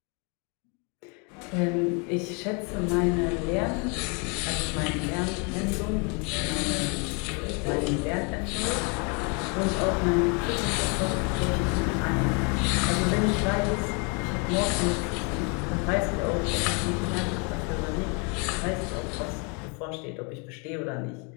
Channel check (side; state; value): right; quieter; 34.3 dB